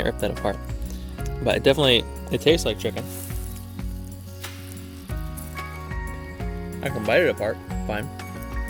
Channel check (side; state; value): both; identical; correlation 1.00